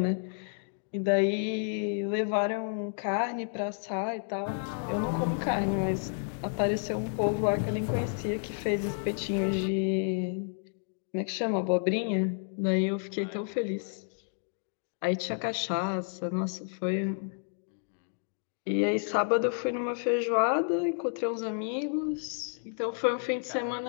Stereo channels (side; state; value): right; silent; digital silence